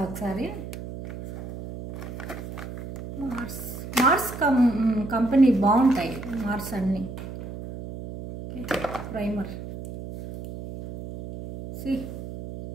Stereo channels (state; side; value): noise; right; hum, 10 dB below the sound